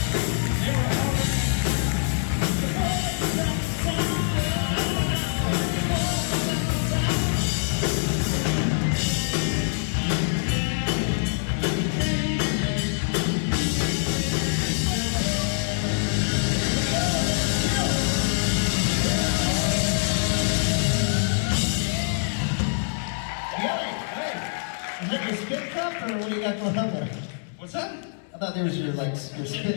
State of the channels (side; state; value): right; silent; 59 dB below the other